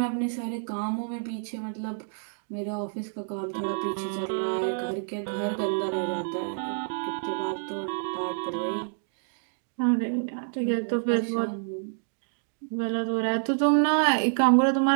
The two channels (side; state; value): left; silent; digital silence